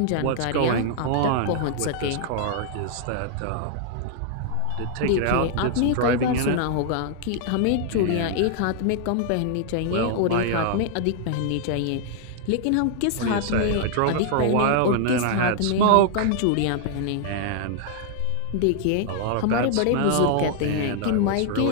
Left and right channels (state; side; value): different; both; correlation -0.01